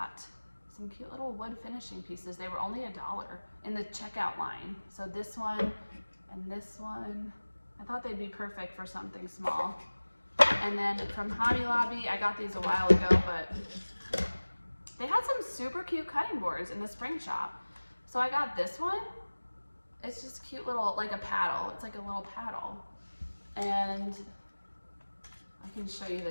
some cute little wood finishing pieces. They were only $1 in the checkout line. So this one and this one, I thought they'd be perfect for something small. And then from Hobby Lobby, I got these a while ago, but they had some super cute cutting boards in the spring shop. So I got this one. It's just cute little, like a paddle. It's like a little paddle. And I can show you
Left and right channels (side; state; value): both; inverted; correlation -1.00